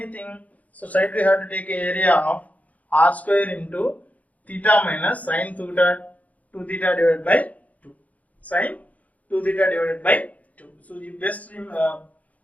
so straight we have to take an area of r square into theta minus sin 2 theta divided by 2, sin 2 theta divided by 2. So you best please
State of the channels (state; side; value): late; right; 0.072 ms